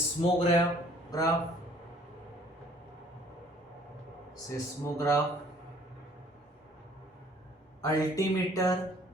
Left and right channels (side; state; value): both; normal; correlation 0.57